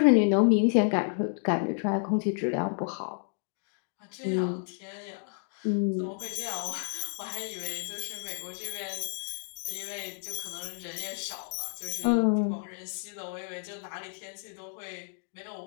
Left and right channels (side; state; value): right; silent; 57 dB below the other